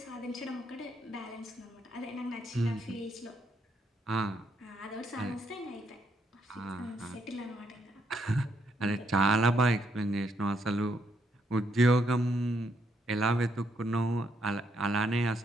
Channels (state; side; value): normal; both; correlation 0.75